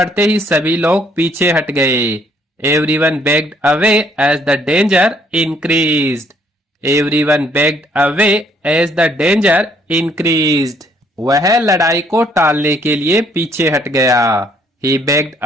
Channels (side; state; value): both; normal; correlation 0.65